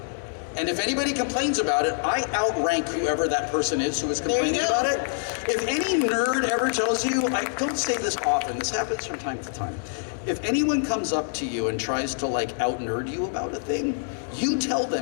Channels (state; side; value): silent; right; digital silence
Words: And if anybody complains about it, I outrank whoever that person is who is complaining about it. If any nerd ever tells you, I don't say this often, this happens from time to time. If anyone comes up to you and tries to like out-nerd you about a thing, you tell